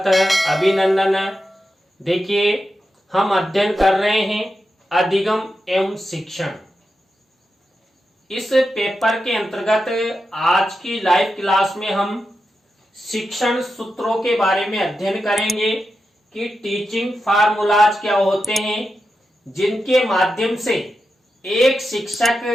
है, अभिनंदन है। देखिए, हम अध्ययन कर रहे हैं अधिगम एवं शिक्षण। इस पेपर के अंतर्गत आज की लाइव क्लास में हम शिक्षण सूत्रों के बारे में अध्ययन करेंगे कि टीचिंग फार्मूलाज क्या होते हैं, जिनके माध्यम से एक शिक्षक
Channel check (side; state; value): both; normal; correlation 0.89